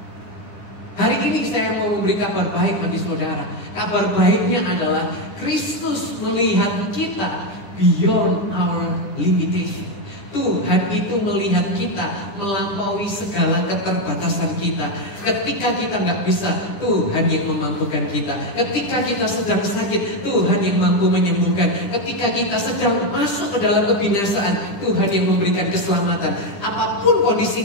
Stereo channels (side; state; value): right; late; 10 ms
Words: Hari ini saya mau memberi kabar baik bagi saudara. Kabar baiknya adalah Kristus melihat kita beyond our limitation. Tuhan itu melihat kita melampaui segala keterbatasan kita. Ketika kita nggak bisa, Tuhan yang memampukan kita. Ketika kita sedang sakit, Tuhan yang mampu menyembuhkan. Ketika kita sedang masuk ke dalam kebinasaan, Tuhan yang memberikan keselamatan. Apapun kondisi